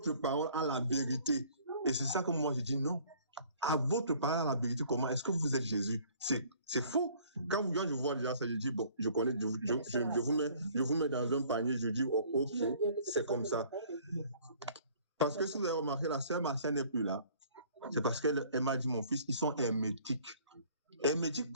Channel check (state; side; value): inverted; both; correlation -0.55